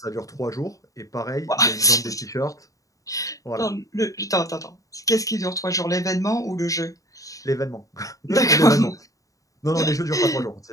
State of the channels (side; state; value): right; late; 0.16 ms